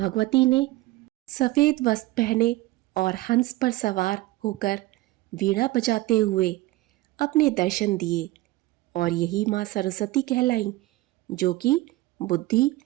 ने सफ़ेद वस्त्र पहने और हंस पर सवार होकर वीणा बजाते हुए अपने दर्शन दिए और यही माँ सरस्वती कहलाईं, जो कि बुद्धि,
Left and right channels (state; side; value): quieter; left; 18.5 dB